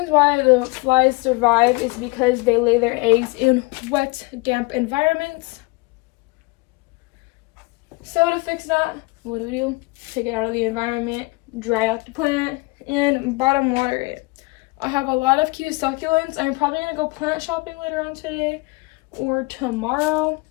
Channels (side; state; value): right; quieter; 25.6 dB